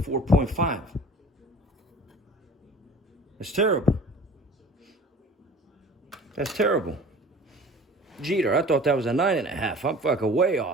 That's terrible. That's terrible. Jeter, I thought that was a 9.5. I'm fucking way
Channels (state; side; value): normal; both; correlation 0.45